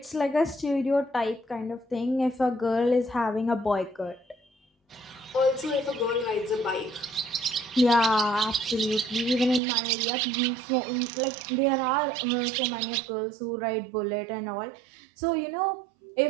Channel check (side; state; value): left; drops out; at 9.6 s